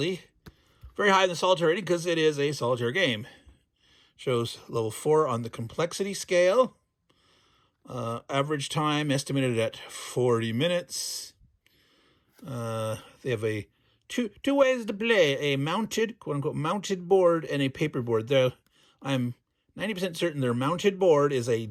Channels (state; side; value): identical; both; correlation 1.00